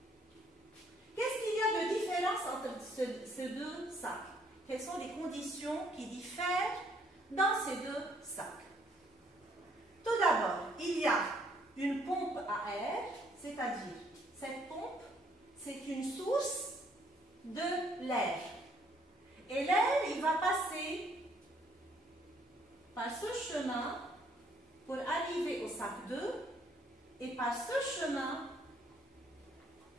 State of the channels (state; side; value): normal; both; correlation 0.66